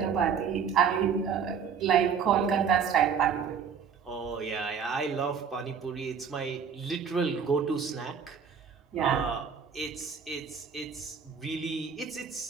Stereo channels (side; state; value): left; quieter; 6.7 dB